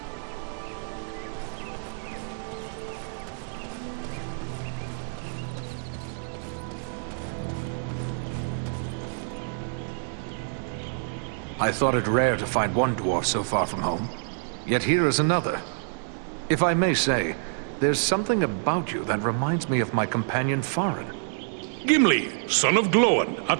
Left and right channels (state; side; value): silent; left; digital silence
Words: I thought it rare to find one dwarf so far from home. Yet here is another. If I may say, there's something about you that reminds me of my companion Farin. Gimli, son of Glóin,